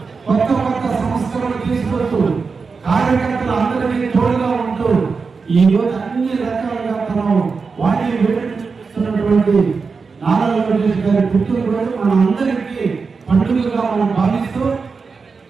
కొత్త కొత్త సంస్థలను తీసుకొస్తూ కార్యకర్తలు అందరికీ తోడుగా ఉంటూ ఈ రోజు అన్ని రకాలుగా మనం వాటిని వేడుతున్నటువంటి నారా లోకేష్ గారి పుట్టినరోజు మన అందరికీ పండుగగా మనం భావిస్తూ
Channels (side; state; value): left; quieter; 4.8 dB